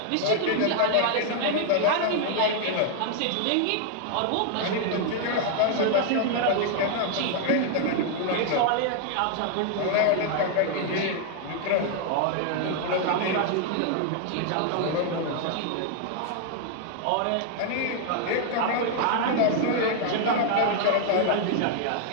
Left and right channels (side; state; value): both; different; correlation 0.00